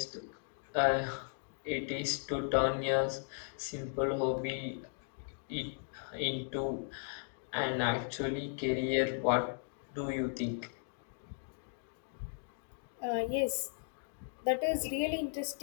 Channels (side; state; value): right; silent; digital silence